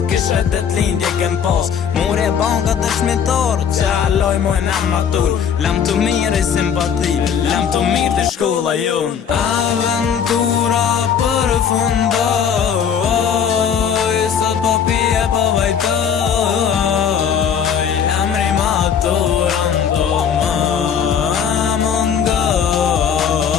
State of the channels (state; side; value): quieter; right; 7.7 dB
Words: kishe të t'lindje kem pas. Mure banka të shmitar, që aloj mojnë am matur, lam të mirë i simpati, lam të mirë të shkolla jon. Aventura përfundoj, sot po pije po vajtoj, emri maturan do më